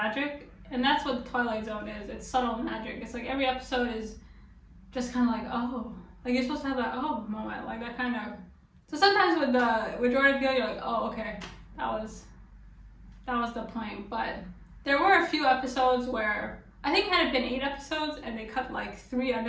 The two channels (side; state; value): both; identical; correlation 1.00